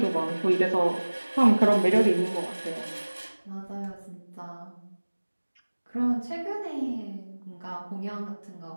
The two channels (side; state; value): both; inverted; correlation -1.00